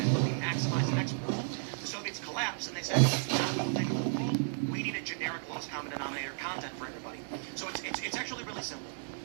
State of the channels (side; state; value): left; silent; digital silence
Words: we maximized the export. The Soviets collapsed and they said, we need a generic lowest common denominator content for everybody. So it's actually really simple.